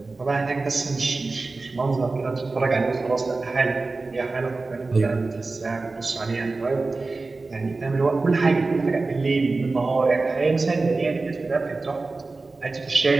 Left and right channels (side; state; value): left; quieter; 3.6 dB